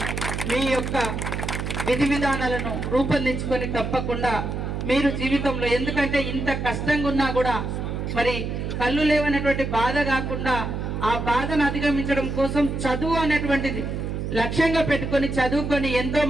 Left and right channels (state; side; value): noise; right; hum, 3 dB below the sound